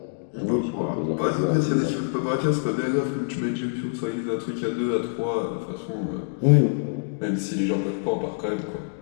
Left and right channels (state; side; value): silent; right; digital silence